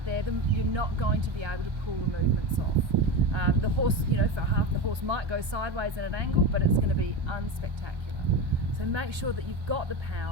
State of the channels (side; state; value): left; late; 1.1 ms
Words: there, then you're not going to be able to pull the movements off. The horse, for half, the horse might go sideways at an angle, but it's going to be unspectacular. So make sure that you've got the